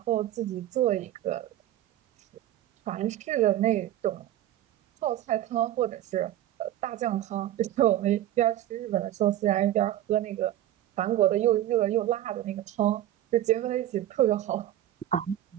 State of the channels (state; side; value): quieter; left; 13.0 dB